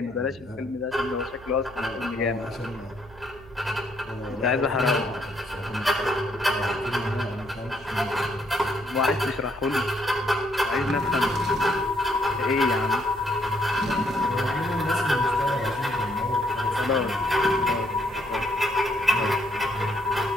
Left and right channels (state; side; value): noise; right; hum, 22 dB below the sound